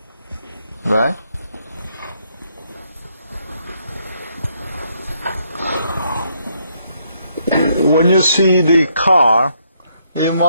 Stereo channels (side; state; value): both; inverted; correlation -0.73